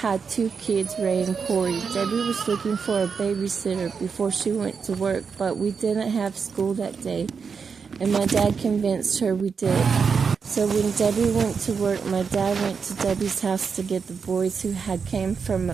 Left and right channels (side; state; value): left; quieter; 5.8 dB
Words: 2 kids, Ray and Corey. Debbie was looking for a babysitter before she went to work, but we didn't have school that day, and my dad convinced her we did. So when Debbie went to work, my dad went to Debbie's house to get the boys who had came from